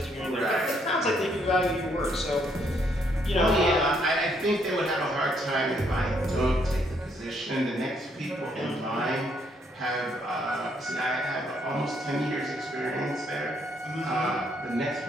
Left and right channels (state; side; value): normal; both; correlation 0.71